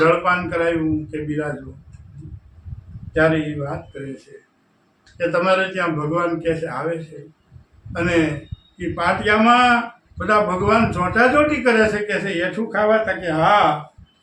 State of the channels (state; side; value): identical; both; correlation 1.00